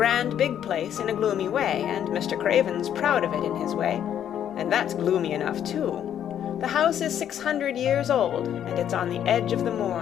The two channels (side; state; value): right; quieter; 9.9 dB